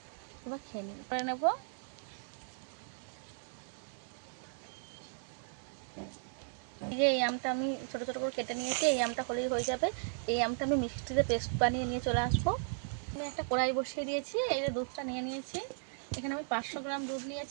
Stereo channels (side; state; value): left; silent; digital silence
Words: এবার খেয়ে করে নেব। এই আমটা আমি ছোটো ছোটো করে কেটে নিয়েছি, এই আমটা হলেই হয়ে যাবে। এই আমটা আমি মিক্সিতে পেস্ট বানিয়ে নিয়ে চলে আসবো। আমি একটা কড়াই বসিয়ে দিয়েছি, এই যে দুধটা নিয়ে নিয়েছি। এখানে আমি 500 গ্রাম দুধ